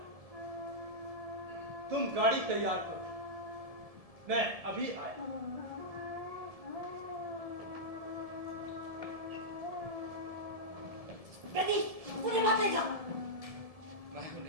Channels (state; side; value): late; left; 1.7 ms